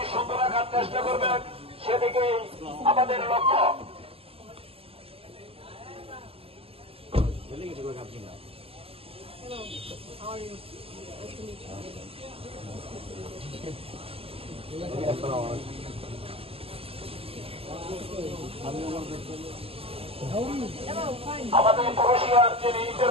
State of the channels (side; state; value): left; late; 0.28 ms